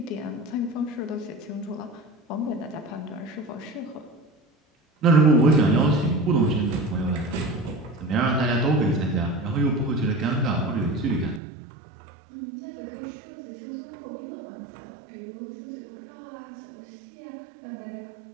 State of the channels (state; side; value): drops out; left; at 11.4 s